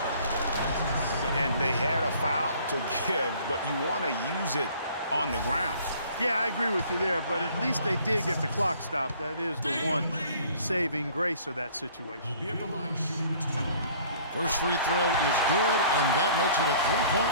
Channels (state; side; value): inverted; both; correlation -0.54